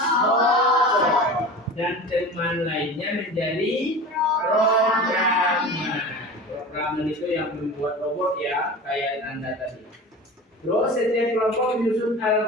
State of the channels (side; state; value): both; normal; correlation 0.34